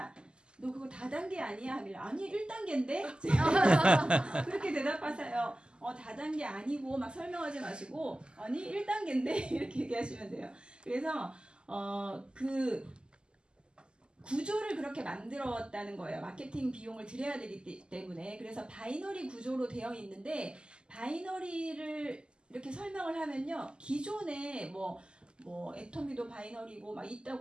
너 그거 다단계 아니야? 하길래 아니 1단계인데? 그렇게 대답하세요. 다단계 아니고 막 설명하지 마시고 아니 1단계인데? 이렇게 얘기하시면 돼요. 그래서 그 구조를 그렇게 만들었다는 거예요. 마케팅 비용을 들여야 되기 때문에. 그래서 바이너리 구조로 되어 있는데 바이너리를 이렇게 설명을 하면요. 기존에 뭐 애터미도 바이너리고 막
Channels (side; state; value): left; late; 0.049 ms